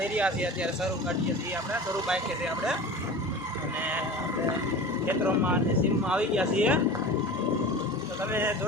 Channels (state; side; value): normal; both; correlation 0.34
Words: રહ્યા છીએ, અત્યારે શરૂ કાઢીએ છીએ, આપણે શરૂ બાઈકે છે આપણે, અને આપણે ખેતરોમાં અને સીમમાં આવી ગયા છીએ। તો તમે